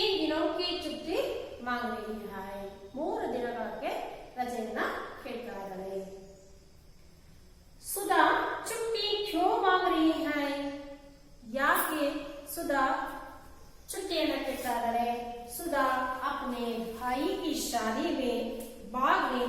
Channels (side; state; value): both; identical; correlation 1.00